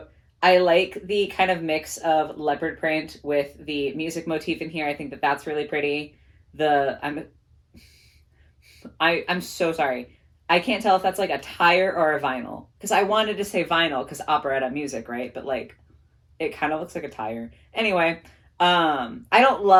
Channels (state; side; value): identical; both; correlation 1.00